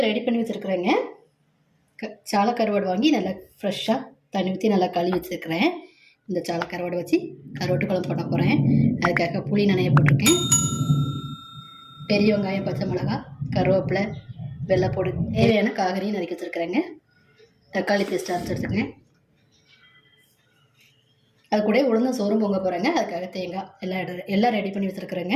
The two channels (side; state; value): both; identical; correlation 1.00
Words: ரெடி பண்ணி வச்சிருக்கிறேங்க. சாலை கருவாடு வாங்கி நல்லா ஃப்ரெஷ்ஷாக தண்ணி ஊற்றி நல்லா கழுவி வச்சிருக்கிறேன். இந்த சாலை கருவாடு வச்சு கருவாட்டு குழம்பு போட போகிறேன். அதுக்காக புளி நனைய போட்டிருக்கேன். பெரிய வெங்காயம், பச்சை மிளகாய், கருவேப்பிலை, வெள்ளைப்பூடு, தேவையான காய்கறியும் நறுக்கி வச்சுருக்கிறேங்க. தக்காளி பேஸ்ட் அரைச்சி எடுத்துக்கிறேன். அது கூட உளுந்த சோறும் பொங்க போகிறேங்க. அதுக்காக தேங்காய் எல்லாம் ரெடி பண்ணி